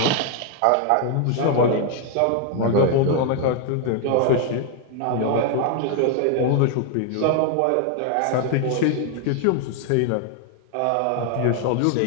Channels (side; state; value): both; different; correlation 0.00